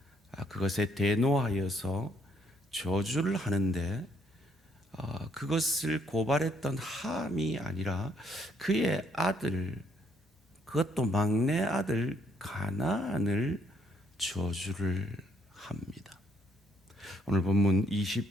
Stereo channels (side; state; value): both; normal; correlation 0.69